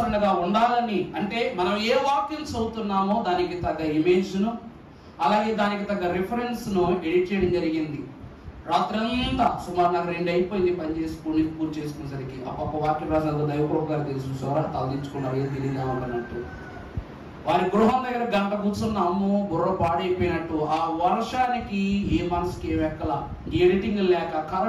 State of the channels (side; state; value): both; identical; correlation 1.00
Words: ఉండాలని, అంటే మనం ఏ వాక్యం చదువుతున్నామో దానికి తగ్గ ఇమేజ్ను అలాగే దానికి తగ్గ రిఫరెన్స్ ను ఎడిట్ చేయడం జరిగింది. రాత్రంతా సుమారు నాకు 2 అయిపోయింది పని చేసుకుని పూర్తి చేసుకునేసరికి. అప్ప వాక్యం రాసిన దైవకృప గారు తెలుసు చూసారా, తలదించుకున్నారు, ఏం తెలియదామన్నట్టు. వారి గృహం దగ్గర గంట కూర్చున్నాము, బుర్ర పాడైపోయినట్టు. ఆ వర్షానికి ఏ మనసుకి ఏం ఎక్కల, ఎడిటింగ్ లేక,